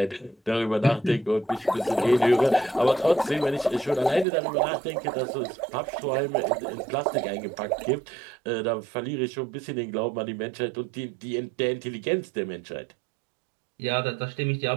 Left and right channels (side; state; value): left; drops out; at 4.2 s